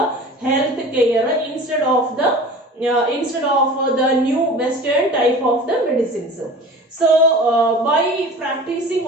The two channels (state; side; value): normal; both; correlation 0.40